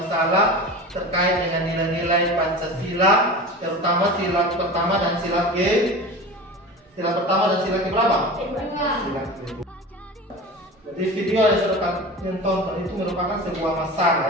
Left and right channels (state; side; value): normal; both; correlation 0.32